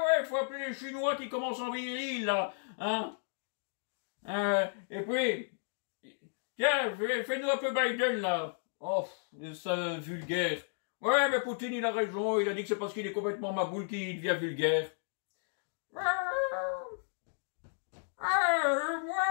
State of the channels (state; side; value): silent; right; digital silence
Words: faut appeler les Chinois qui commencent en viril, là, hein. Et puis, tiens, fais-nous un peu Biden, là. Oh, c'est vulgaire. Ouais, mais Poutine, il a raison, il a dit que c'est parce qu'il est complètement maboule qu'il devient vulgaire.